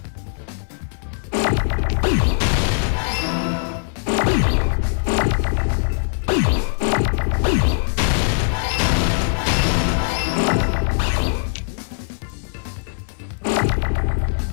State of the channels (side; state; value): right; silent; digital silence